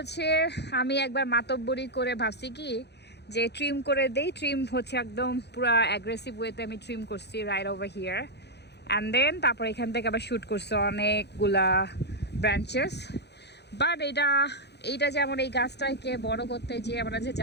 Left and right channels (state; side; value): late; right; 0.49 ms